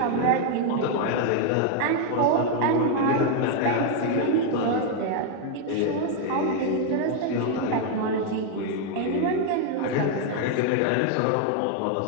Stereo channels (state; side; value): different; both; correlation 0.00